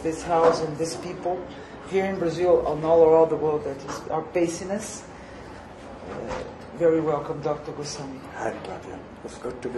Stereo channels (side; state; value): both; identical; correlation 1.00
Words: this house and these people here in Brazil and all around the world that are facing us. Very welcome, Dr. Goswami. Hi, Claudia. It's good to